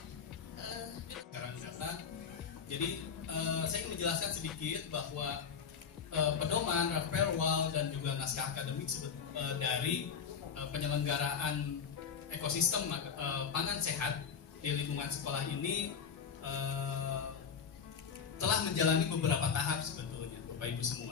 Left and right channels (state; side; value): quieter; right; 6.7 dB